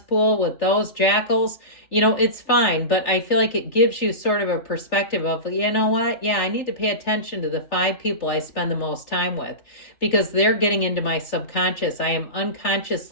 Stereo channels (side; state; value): right; late; 3.4 ms